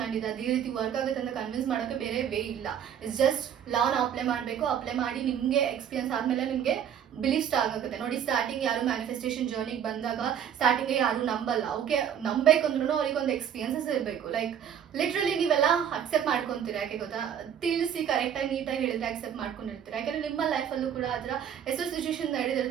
ಮೈಂಡ್ ಇದೆ, ಅದೇ ರೀತಿ ವರ್ಕ್ ಆಗುತ್ತೆ ಅಂತ ಕನ್ವಿನ್ಸ್ ಮಾಡೋಕ್ಕೆ ಬೇರೆ ವೇ ಇಲ್ಲ. ಇಟ್ಸ್ ಜಸ್ಟ್ ಲಾನ ಅಪ್ಲೈ ಮಾಡಬೇಕು. ಅಪ್ಲೈ ಮಾಡಿ ನಿಮಗೆ ಎಕ್ಸ್ಪೀರಿಯನ್ಸ್ ಆದಮೇಲೆ ನಿಮಗೆ ಬಿಲೀವ್ ಸ್ಟಾರ್ಟ್ ಆಗುತ್ತೆ. ನೋಡಿ, ಸ್ಟಾರ್ಟಿಂಗ್ ಯಾರು ಮ್ಯಾನಿಫೆಸ್ಟೇಷನ್ ಜರ್ನಿಗೆ ಬಂದಾಗ ಸ್ಟಾರ್ಟಿಂಗ್ಗೆ ಯಾರು ನಂಬಲ್ಲ. ಓಕೆ, ನಂಬೇಕಂದ್ರೂ ಅವ್ರಿಗೊಂದು ಎಕ್ಸ್ಪೀರಿಯನ್ಸಸ್ ಇರಬೇಕು. ಲೈಕ್ ಲಿಟ್ರಲಿ ನೀವೆಲ್ಲ ಅಕ್ಸೆಪ್ಟ್ ಮಾಡ್ಕೊತೀರಾ. ಯಾಕೆ ಗೊತ್ತಾ, ತಿಳಿಸಿ ಕರೆಕ್ಟಾಗಿ ನೀಟಾಗಿ ಹೇಳಿದ್ರೆ ಅಕ್ಸೆಪ್ಟ್ ಮಾಡ್ಕೊಂಡಿರ್ತೀರ. ಯಾಕೆಂದರೆ ನಿಮ್ಮ ಲೈಫಲ್ಲೂ ಕೂಡ ಆ ಥರ ಎಷ್ಟೋ ಸಿಚುವೇಶನ್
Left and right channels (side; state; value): left; quieter; 8.9 dB